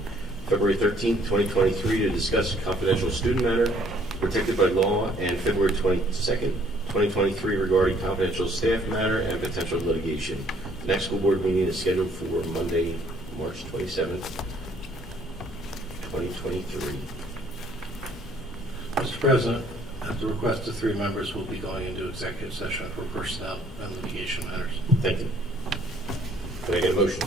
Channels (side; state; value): both; normal; correlation 0.62